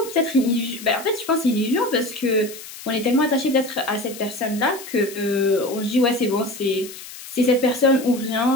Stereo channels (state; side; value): noise; left; hiss, 14 dB below the sound